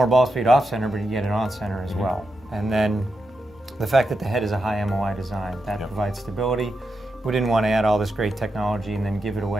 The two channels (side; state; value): both; normal; correlation 0.86